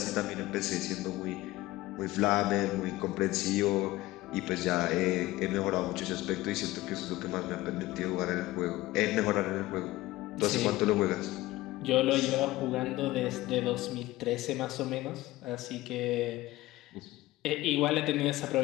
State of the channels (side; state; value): right; quieter; 17.8 dB